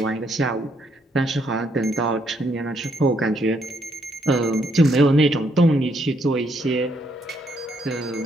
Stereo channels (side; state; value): both; normal; correlation 0.73